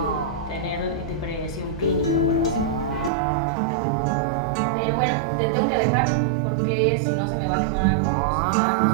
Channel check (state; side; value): drops out; left; at 3.1 s